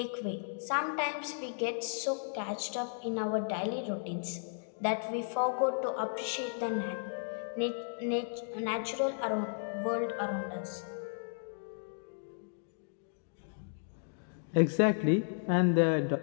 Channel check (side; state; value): right; silent; digital silence